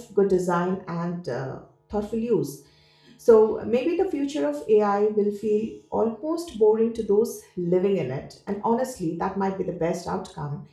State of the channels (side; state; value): both; identical; correlation 1.00